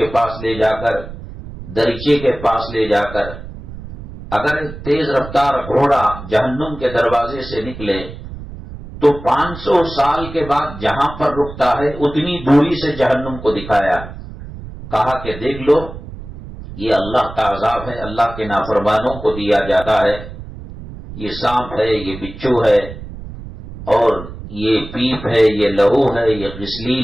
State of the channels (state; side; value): noise; right; rumble, 13 dB below the sound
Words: پاس لے جا کر، دریچے کے پاس لے جا کر، اگر ایک تیز رفتار گھوڑا جہنم کے دروازے سے نکلے تو 500 سال کے بعد جہاں پر رکتا ہے اتنی دوری سے جہنم کو دکھایا، کہا کہ دیکھ لو یہ اللہ کا عذاب ہے، اللہ کے نافرمانوں کو دیا جاتا ہے، یہ سانپ ہے، یہ بچھو ہے، اور یہ پیپ ہے، یہ لہو ہے، یہ